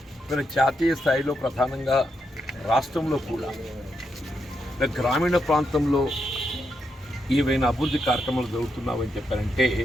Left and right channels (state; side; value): normal; both; correlation 0.82